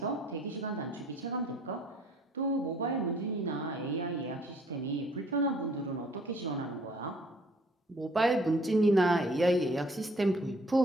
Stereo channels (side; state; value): both; normal; correlation 0.58